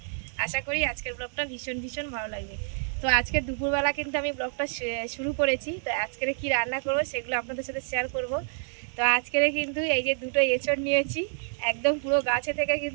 আশা করি আজকের ব্লগটা ভীষণ ভালো লাগবে। তো আজকে দুপুরবেলা কিন্তু আমি ব্লগটা শুরু করেছি। তো আজকের কি রান্না করব সেগুলো আপনাদের সাথে শেয়ার করব। তো আজকের কিন্তু এই যে দুটো এঁচড় নিয়েছি, একদম পুরো গাছে থেকে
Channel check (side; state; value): left; silent; digital silence